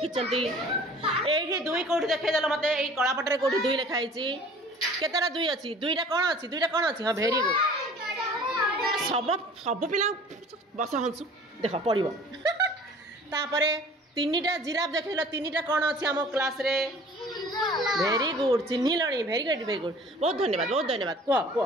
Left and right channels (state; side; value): normal; both; correlation 0.48